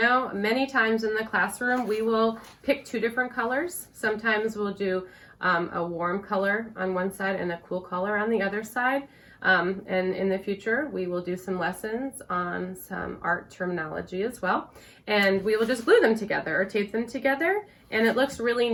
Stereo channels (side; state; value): both; identical; correlation 1.00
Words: many times in the classroom we will pick 2 different colors. Sometimes we'll do a warm color on one side and a cool color on the other side. And in the future, we will do some lessons on some art terminology as well. And we will just glue them together or tape them together. And it looks really